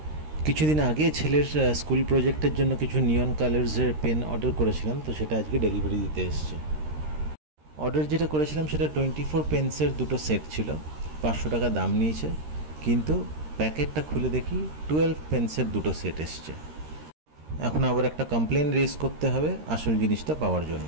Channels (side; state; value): left; late; 13 ms